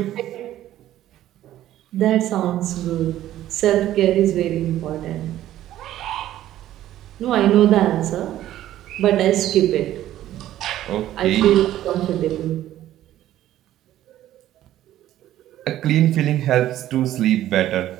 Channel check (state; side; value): quieter; left; 13.2 dB